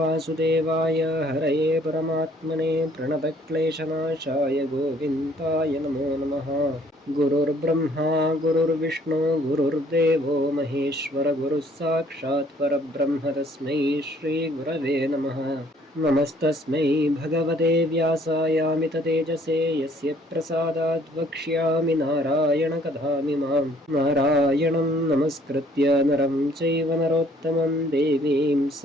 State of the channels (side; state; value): both; normal; correlation 0.61